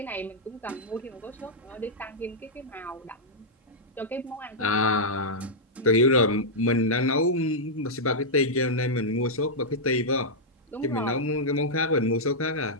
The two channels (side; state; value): both; normal; correlation -0.08